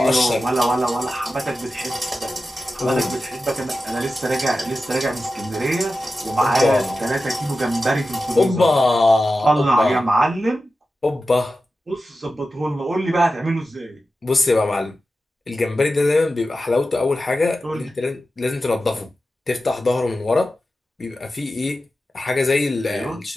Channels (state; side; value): normal; both; correlation 0.93